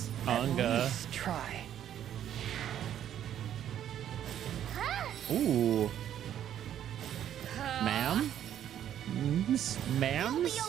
Unga. Let's try. Ooh, ma'am, You'll ma'ams. be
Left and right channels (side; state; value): left; quieter; 10.5 dB